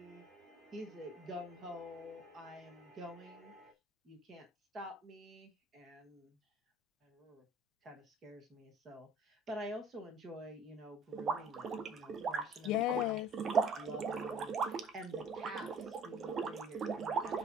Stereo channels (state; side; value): normal; both; correlation 0.51